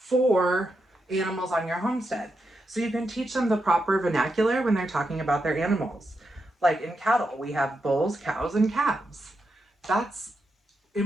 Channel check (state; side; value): normal; both; correlation 0.85